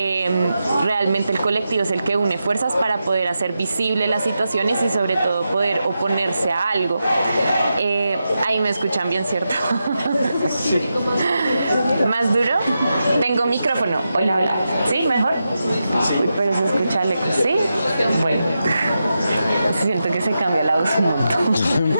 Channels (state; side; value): inverted; both; correlation -0.89